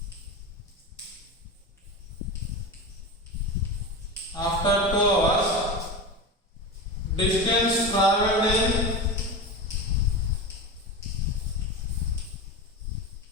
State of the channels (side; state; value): both; normal; correlation 0.24